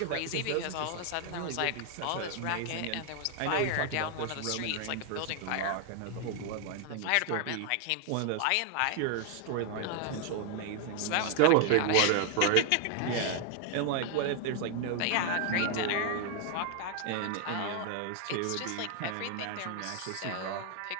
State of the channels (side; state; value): both; different; correlation 0.00